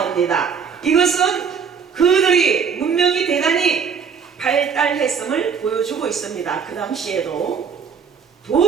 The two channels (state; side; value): quieter; left; 6.5 dB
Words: 이것은 그들이 문명이 대단히 발달했음을 보여주고 있습니다. 그 당시에도